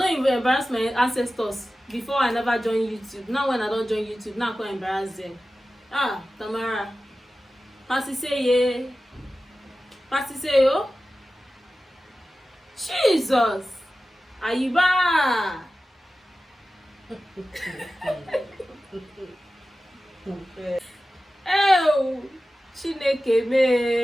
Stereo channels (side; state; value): both; normal; correlation 0.95